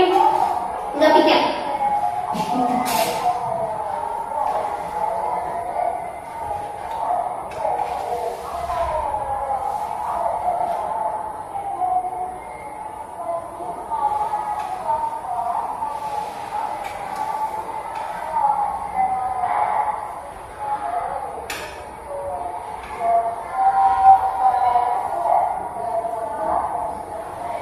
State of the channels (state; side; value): identical; both; correlation 1.00